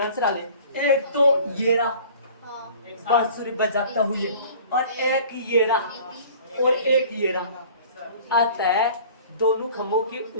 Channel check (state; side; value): inverted; both; correlation -0.47